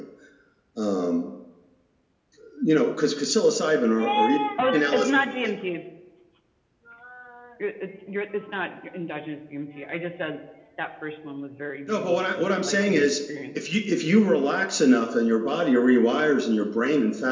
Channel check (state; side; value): identical; both; correlation 1.00